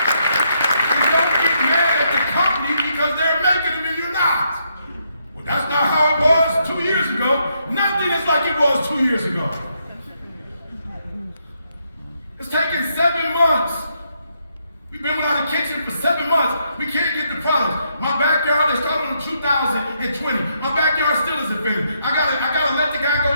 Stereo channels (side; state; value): both; inverted; correlation -0.77